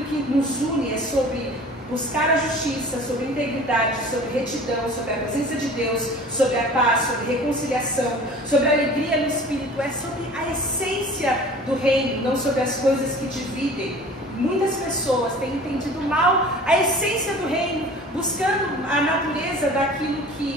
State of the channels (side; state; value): both; normal; correlation 0.44